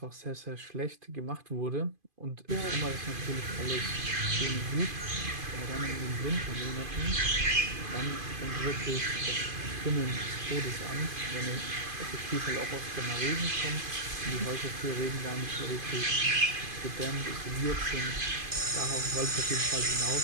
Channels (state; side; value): late; left; 2.5 ms